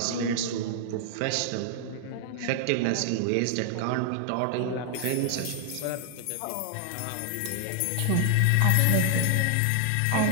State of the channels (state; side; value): different; both; correlation 0.00